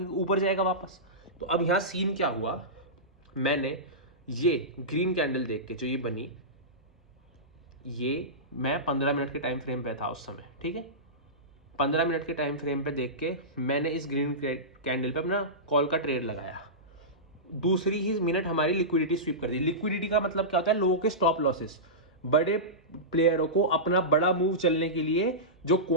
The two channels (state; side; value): normal; both; correlation -0.17